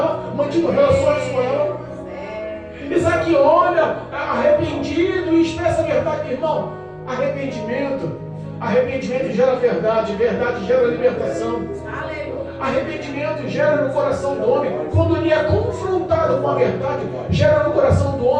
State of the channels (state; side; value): identical; both; correlation 1.00